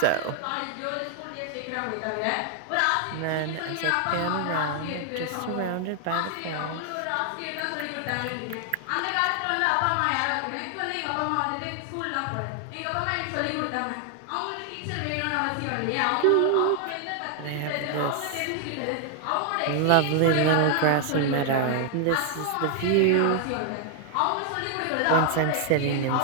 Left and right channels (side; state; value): both; different; correlation 0.00